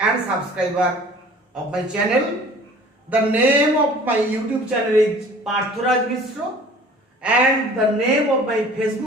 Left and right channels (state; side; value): normal; both; correlation 0.48